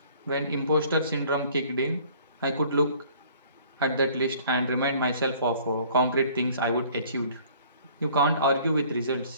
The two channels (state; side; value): inverted; both; correlation -0.54